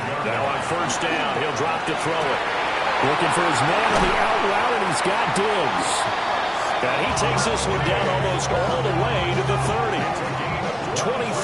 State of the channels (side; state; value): both; identical; correlation 1.00